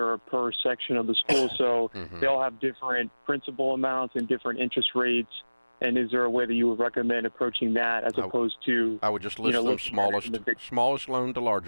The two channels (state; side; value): inverted; both; correlation -1.00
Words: or per section of the school, so Mhm. they all have different principal amounts and different interest rates. And is there a way that you would recommend approaching that as opposed to? I would just list them looking at it smallest in the big- smallest loan to